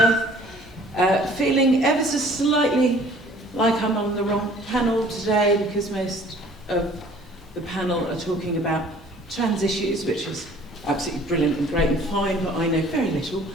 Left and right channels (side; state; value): both; normal; correlation 0.53